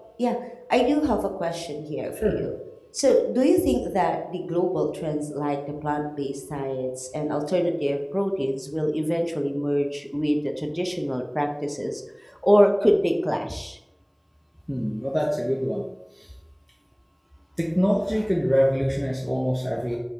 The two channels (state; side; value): identical; both; correlation 1.00